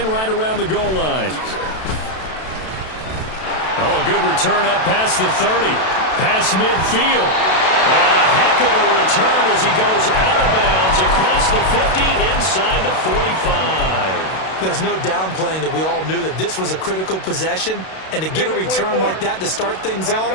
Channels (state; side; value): late; right; 32 ms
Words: right around the goal line. Oh, a good return up past the 30. Past midfield. And a heck of a return as he goes out of bounds across the 50 inside the 45. There's no downplaying that we all knew that this was a critical possession, and to get a return like that to start things off,